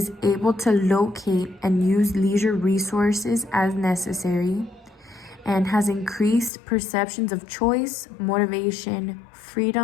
able to locate and use leisure resources as necessary, and has increased perceptions of choice, motivation,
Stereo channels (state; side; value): drops out; right; at 6.5 s